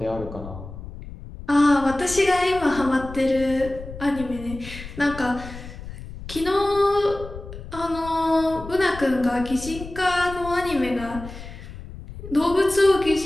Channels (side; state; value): left; noise; rumble, 13 dB below the sound